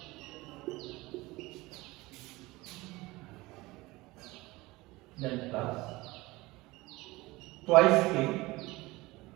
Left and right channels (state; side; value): quieter; left; 21.0 dB